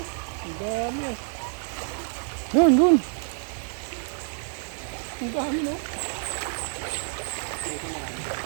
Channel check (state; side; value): silent; left; 58 dB below the other